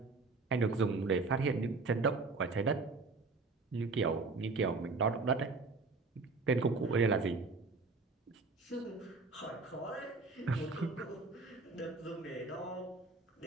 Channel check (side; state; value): left; quieter; 3.9 dB